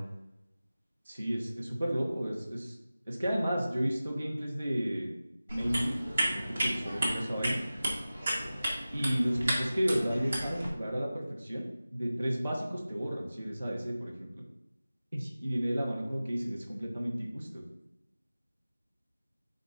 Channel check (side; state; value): both; inverted; correlation -0.96